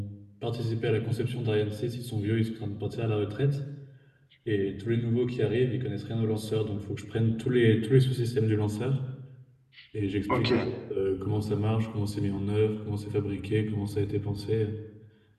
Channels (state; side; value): identical; both; correlation 1.00